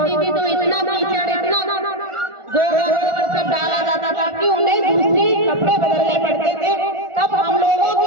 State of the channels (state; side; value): late; left; 1.4 ms